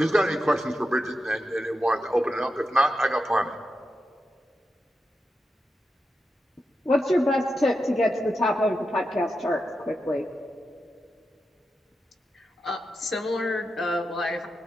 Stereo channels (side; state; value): both; normal; correlation 0.88